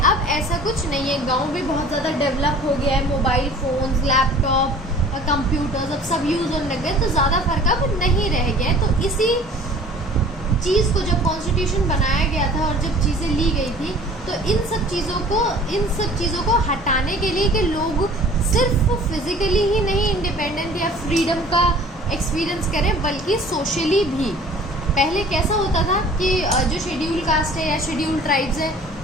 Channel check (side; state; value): both; normal; correlation 0.48